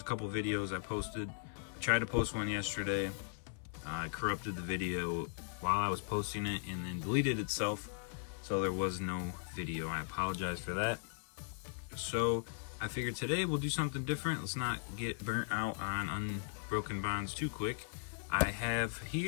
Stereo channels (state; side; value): silent; right; 52 dB below the other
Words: couple videos I posted. I tried to post one yesterday. I corrupted the video while I was posting it and then deleted itself, so there was no video. I apologize for that. So I figured today we'll do something different. Let's not get burnt out on Unbroken Bonds too quick. I have